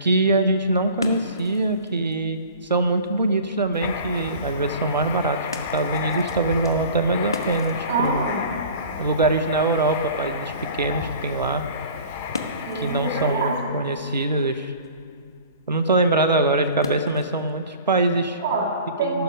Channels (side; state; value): both; inverted; correlation -0.43